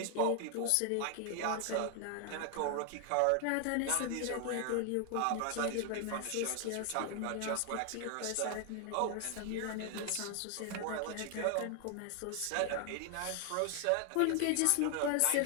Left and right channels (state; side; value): different; both; correlation 0.00